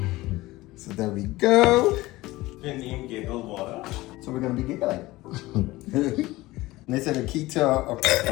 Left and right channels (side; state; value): right; quieter; 18.9 dB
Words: So there we go. And you giggle water. So we're gonna be giggling. And they said the key to a